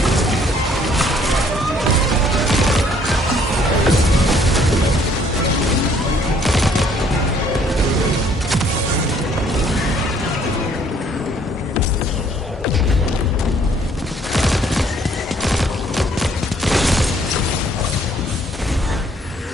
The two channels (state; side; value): normal; both; correlation 0.62